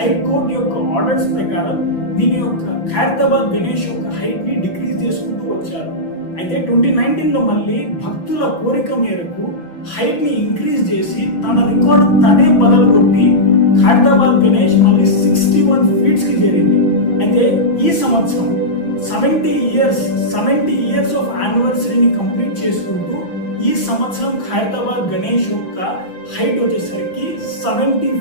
యొక్క ఆర్డర్స్ ప్రకారం దీని యొక్క ఖైరతాబాద్ గణేష్ యొక్క హైట్ ని డిక్రీజ్ చేసుకుంటూ వచ్చారు. అయితే 2019లో మళ్ళీ భక్తుల కోరిక మేరకు హైట్ ని ఇంక్రీజ్ చేసి తన రికార్డు తనే బదలుగొట్టి ఖైరతాబాద్ గణేష్ మళ్ళీ 61 feet కి చేరింది. అయితే ఈ సంవత్సరం 70 years ఆఫ్ యానివర్సరీని కంప్లీట్ చేసుకుంటూ ఈ సంవత్సరం ఖైరతాబాద్ గణేష్ యొక్క హైట్ వచ్చేసరికి 70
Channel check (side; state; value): right; late; 5.9 ms